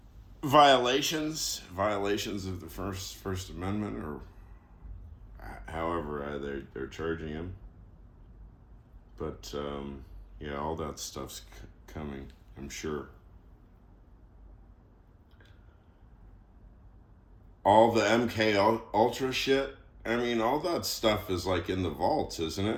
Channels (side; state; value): both; identical; correlation 1.00